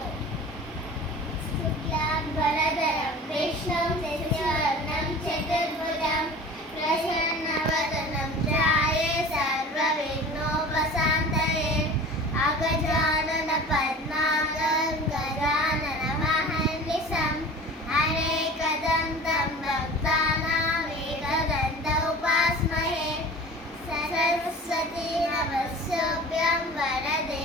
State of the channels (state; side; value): normal; both; correlation 0.40